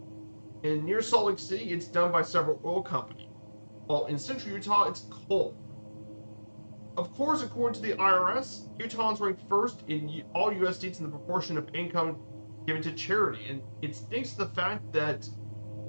And near Salt Lake City, it's done by several oil companies. While in central Utah, it's coal. Of course, according to the IRS, Utah is ranked first in all U.S. states in the proportion of income given to charity, and it's thanks to the fact that,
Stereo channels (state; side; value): inverted; both; correlation -1.00